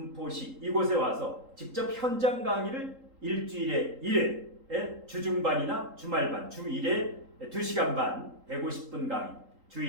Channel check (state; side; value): late; left; 3.8 ms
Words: 이곳에 와서 직접 현장 강의를 일주일에 1회 주중반이나 주말반 주 1회 2시간 반 150분 강의